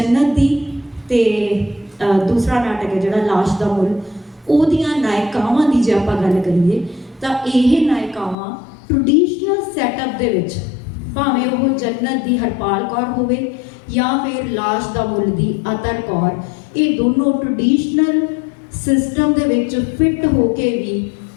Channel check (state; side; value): drops out; right; at 8.3 s